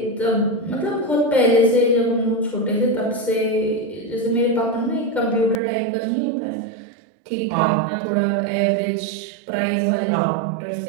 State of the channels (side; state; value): left; drops out; at 5.6 s